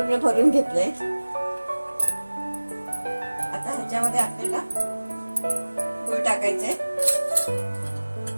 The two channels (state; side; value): inverted; both; correlation -1.00